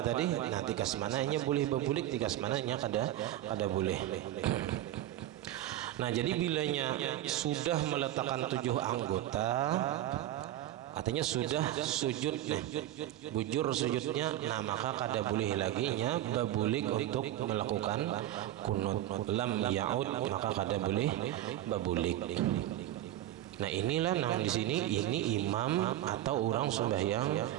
tadi, nah tikas mananya boleh berbulik, tikas mananya kada boleh. Nah, jadi bilanya sudah meletakkan 7 anggota, artinya sudah sujud nih, bujur sujudnya, nah maka kada boleh lagi nya babulik untuk melakukan kunut. Lam yaud, maka kada boleh babulik. Nah, inilah nang di sini ini imam atau orang sembahyang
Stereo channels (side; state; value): left; quieter; 13.4 dB